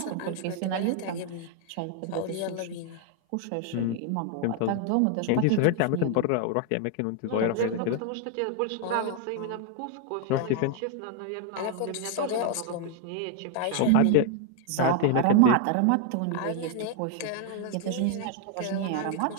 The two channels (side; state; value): both; different; correlation 0.00